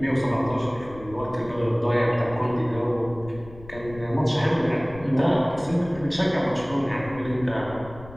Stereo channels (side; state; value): left; noise; rumble, 17 dB below the sound